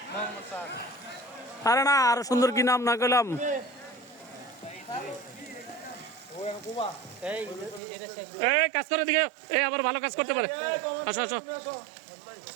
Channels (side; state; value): left; drops out; at 7.8 s